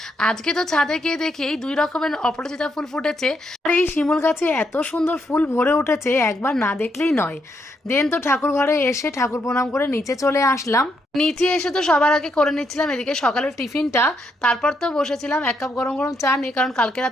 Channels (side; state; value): both; normal; correlation 0.77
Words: আজকে তো ছাদে গিয়ে দেখি 2 রকমের অপরাজিতা ফুল ফুটেছে আর এই শিমুল গাছে এত সুন্দর ফুল ভরে উঠেছে, একবার না দেখলেই নয়। দেন তো ঠাকুর ঘরে এসে ঠাকুর প্রণাম করে নিচে চলে আসলাম। নিচে এসে তো সবার আগে করে নিচ্ছিলাম এদিকে সকালের টিফিনটা, তারপর তো বসেছিলাম 1 কাপ গরম গরম চা নিয়ে, কারণ কালকে